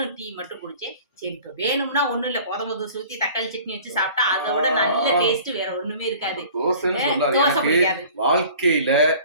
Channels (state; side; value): inverted; both; correlation -0.46